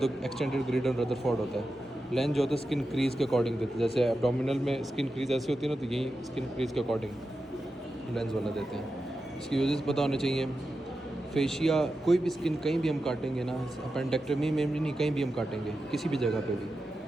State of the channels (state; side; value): normal; both; correlation 0.90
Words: एक्सटेंडेड ग्रिडन रदरफोर्ड होता है। लेंस जो होता है स्किन क्रीज के अकॉर्डिंग देते हैं, जैसे एब्डोमिनल में स्किन क्रीज ऐसी होती है ना, तो यही स्किन क्रीज के अकॉर्डिंग लेंस वाला देते हैं। इसकी यूजेस पता होने चाहिए। फेशिया, कोई भी स्किन कहीं भी हम काटेंगे ना, अपेंडेक्टमी में भी नहीं, कहीं भी हम काटेंगे किसी भी जगह पे भी,